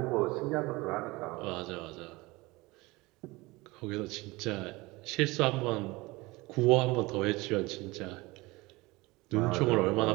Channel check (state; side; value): quieter; left; 22.3 dB